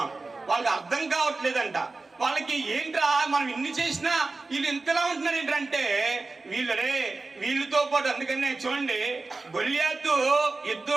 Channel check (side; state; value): left; quieter; 3.6 dB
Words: వాళ్ళకి అర్థం కావట్లేదంట. వాళ్ళకి ఏంట్రా మనం ఇన్ని చేసినా వీళ్ళు ఇంతలా ఉంటున్నారు ఏంటంటే వీళ్ళతో పాటు. అందుకనే చూడండి, గొల్యాతు